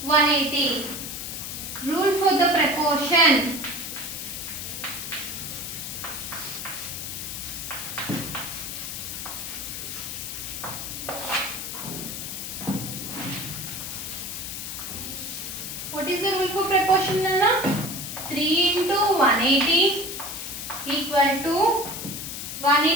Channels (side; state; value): left; noise; hiss, 6 dB below the sound